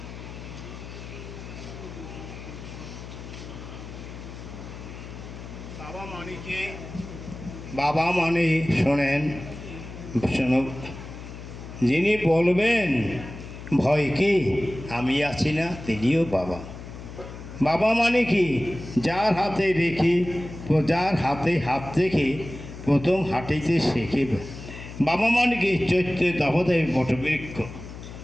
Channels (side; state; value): left; noise; hum, 12 dB below the sound